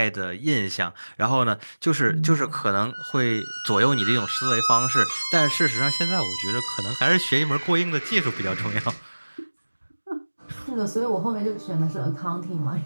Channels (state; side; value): inverted; both; correlation -1.00